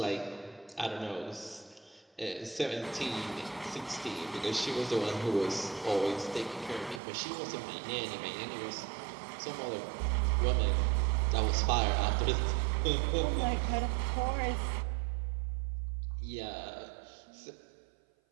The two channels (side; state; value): left; drops out; at 7.0 s